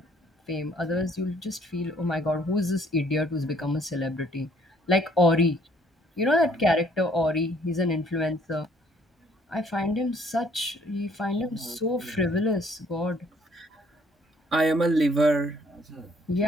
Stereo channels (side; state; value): both; normal; correlation 0.63